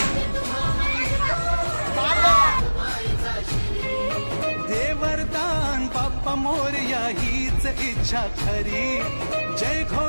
मायेचा शिरी। दे वरदान बाप्पा मोरया हीच इच्छा खरी। जय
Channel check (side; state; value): both; inverted; correlation -1.00